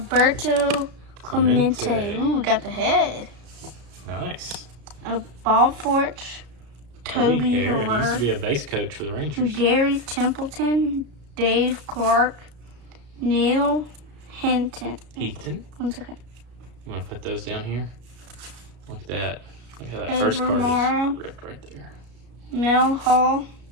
Clemente. Clemente. Ooh, we got the head. Nice. A Bob Forge. Toby Hare. He used to Hare. be a base coach for the Rangers. Gary Templeton. Dave Clark. Neil Hinton. Heaton. 1 second. You want to put those down here? Look at that. Look how that first Overmars. card is ripped right there. Mel Hall.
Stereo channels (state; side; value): late; left; 34 ms